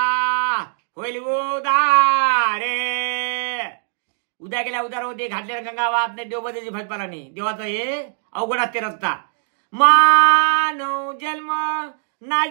होईल उदारे. उद्या गेल्या उदार होते घातले गंगावात नाही देवबद्याची भजपालाने देवाचा हे अवघड असते रस्ता. मानव जन्म ना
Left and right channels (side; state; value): left; silent; 65 dB below the other